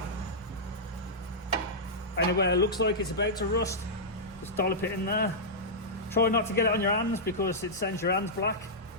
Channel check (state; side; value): normal; both; correlation -0.11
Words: Anywhere it looks like it's about to rust, just dollop it in there. Try not to get it on your hands because it sends your hands black